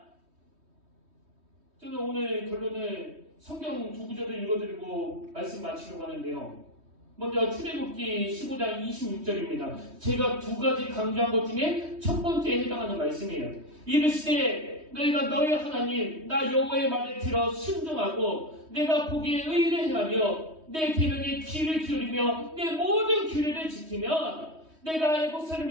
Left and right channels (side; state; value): left; late; 3.2 ms